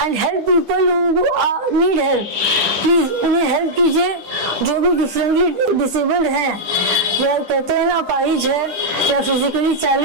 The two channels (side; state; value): left; late; 10 ms